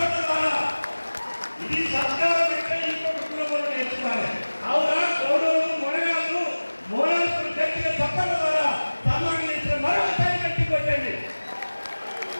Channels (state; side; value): inverted; both; correlation -1.00